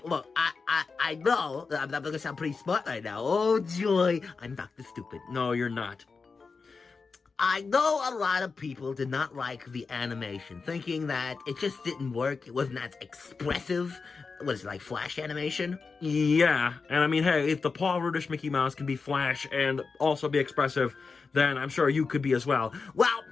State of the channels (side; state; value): right; quieter; 4.7 dB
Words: look, I know that I'm gonna sound pretty smart right now. Oh, joy. I'm Dr. Stupid. No, you're not. I know a lot of people did not like the animation, thinking that it just didn't work. It wasn't as expressive. Was it like Flash animation? Yeah, and I mean, hey, if the Paul Rudish Mickey Mouse can be Flash and also be expressive, then I'm sure you could be as well. Well,